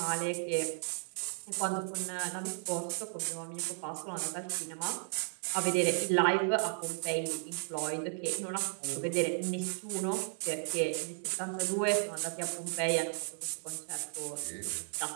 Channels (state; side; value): silent; left; 55 dB below the other